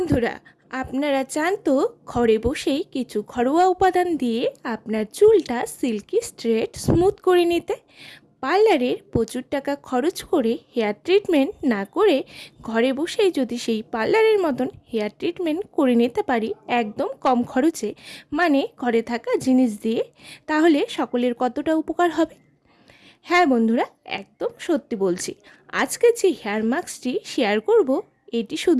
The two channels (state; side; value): identical; both; correlation 1.00